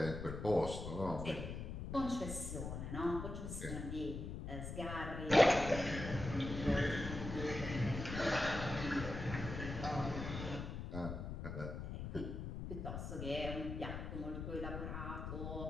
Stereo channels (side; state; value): left; noise; rumble, 6 dB below the sound